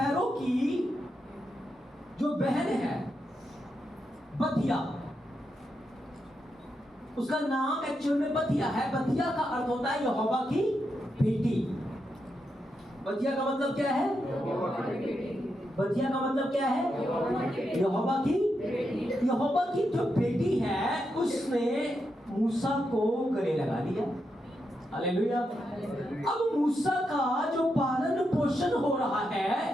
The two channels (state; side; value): normal; both; correlation 0.84